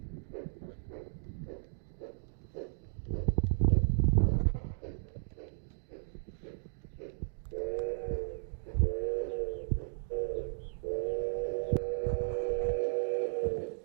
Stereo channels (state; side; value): silent; left; digital silence